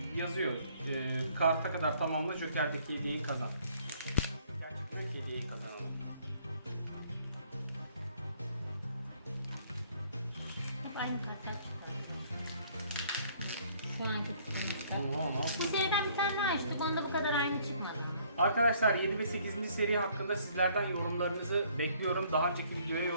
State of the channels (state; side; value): inverted; both; correlation -0.61